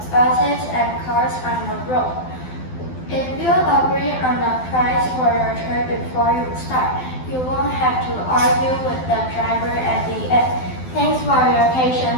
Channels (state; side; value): late; right; 12 ms